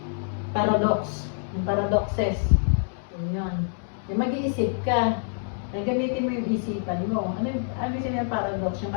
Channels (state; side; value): silent; right; digital silence